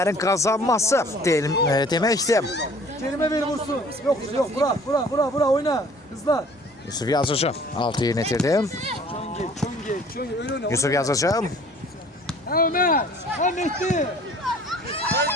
kazanması demektir. Kerim'e ver vursun. Yok bura oyna. Hızla. Yusuf Yazıcı altı yerinə itirdi. Çön geç. Öyle oyna. Yusuf Yazıcı. Ha Ömer. Ha Mehdi.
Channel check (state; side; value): normal; both; correlation 0.52